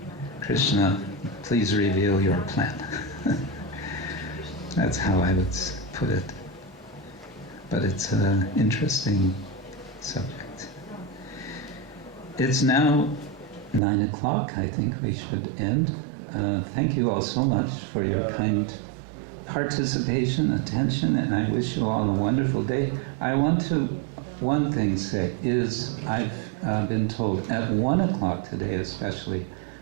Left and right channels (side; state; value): left; drops out; at 13.8 s